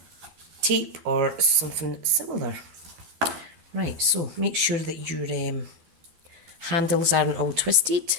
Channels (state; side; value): late; left; 12 ms